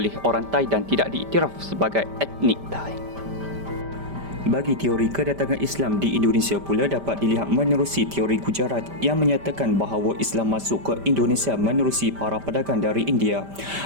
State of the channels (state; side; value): late; left; 5.1 ms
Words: orang Thai dan tidak diiktiraf sebagai etnik Thai. Bagi teori kedatangan Islam di Indonesia pula dapat dilihat menerusi teori Gujarat yang menyatakan bahawa Islam masuk ke Indonesia menerusi para pedagang dari India.